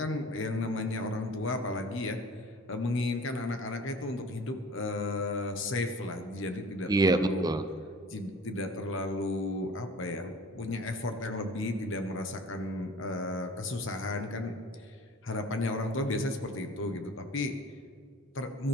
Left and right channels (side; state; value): both; normal; correlation 0.45